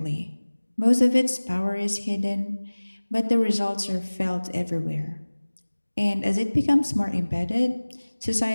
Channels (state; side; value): inverted; both; correlation -1.00